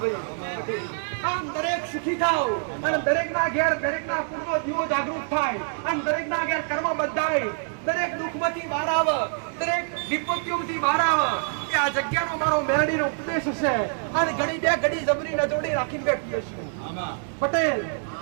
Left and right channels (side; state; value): left; silent; 61 dB below the other